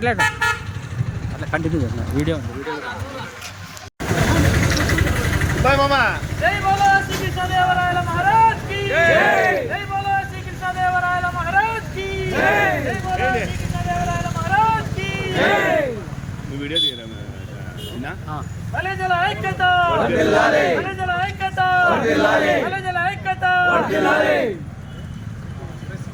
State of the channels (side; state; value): both; identical; correlation 1.00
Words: కంటిన్యూ చేస్తున్నా వీడియో ఉంది బాయ్ మామా జై బోలో శ్రీ కృష్ణదేవరాయల మహారాజ్ కి జై బోలో శ్రీ కృష్ణదేవరాయల మహారాజ్ కి జై బోలో శ్రీ కృష్ణదేవరాయల మహారాజ్ కి నువ్వు వీడియో తీయరా బలిజల ఐక్యత వర్ధిల్లాలి బలిజల ఐక్యత వర్ధిల్లాలి బలిజల ఐక్యత వర్ధిల్లాలి